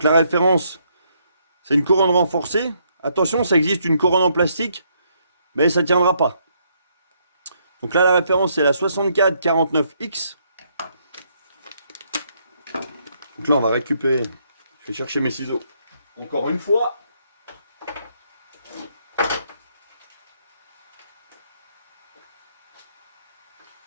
la référence, c'est une couronne renforcée. Attention, ça existe une couronne en plastique, mais ça ne tiendra pas. Donc là, la référence, c'est la 6449X. Donc là, on va récupérer. Je vais chercher mes ciseaux. Encore une fois.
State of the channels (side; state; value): both; inverted; correlation -0.72